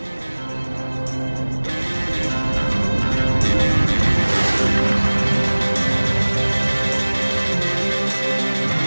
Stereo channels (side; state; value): both; inverted; correlation -1.00